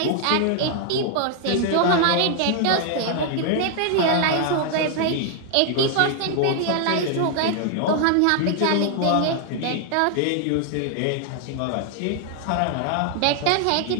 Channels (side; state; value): both; different; correlation 0.00